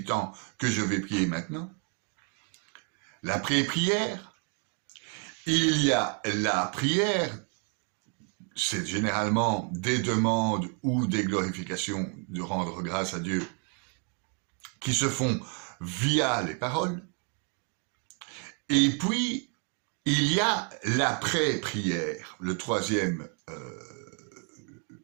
que je vais prier maintenant. La pré-prière, il y a la prière, c'est généralement des demandes ou des glorifications de rendre grâce à Dieu qui se font via les paroles. Et puis, il y a l'après-prière, la troisième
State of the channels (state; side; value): quieter; left; 38.2 dB